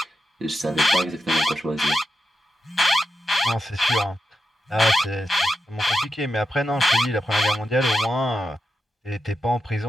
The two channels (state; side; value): normal; both; correlation 0.87